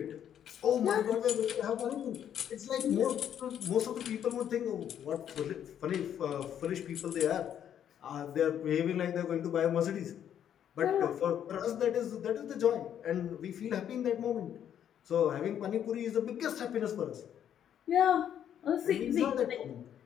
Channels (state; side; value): quieter; right; 9.7 dB